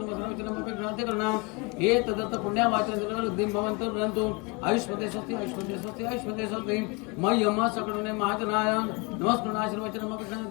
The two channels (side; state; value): right; quieter; 28.7 dB